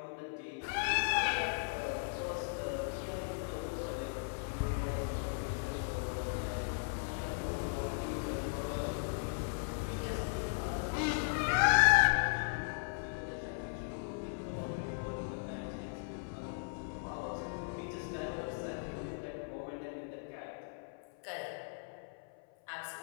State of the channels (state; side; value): silent; right; 53 dB below the other